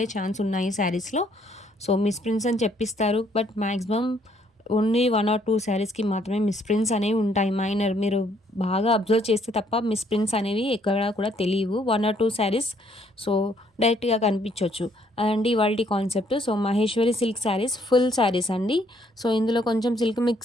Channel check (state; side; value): normal; both; correlation 0.67